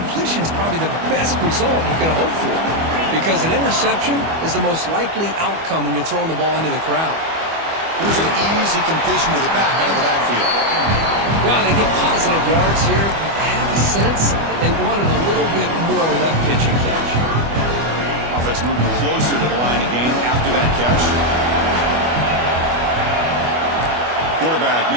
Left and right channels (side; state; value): left; late; 25 ms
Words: is probably the best result you could hope for, because an interception is the most likely outcome when you're throwing the ball into the crowd. Here's an easy completion to the back out of the backfield. Well, they get positive yards here, but I have a sense that they wanted a little bit more with that pitch and catch. Offense moving closer to the line of game after that catch. Quarterback